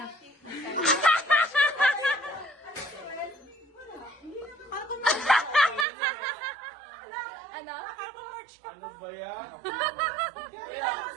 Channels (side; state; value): left; drops out; at 5.9 s